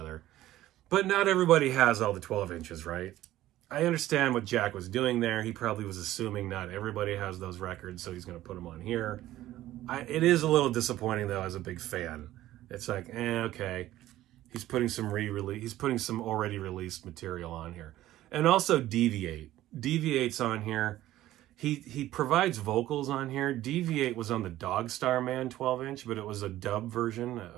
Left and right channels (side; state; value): left; quieter; 14.6 dB